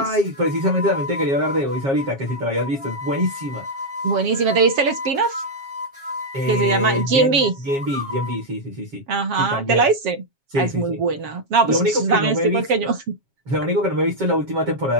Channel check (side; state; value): left; late; 7.3 ms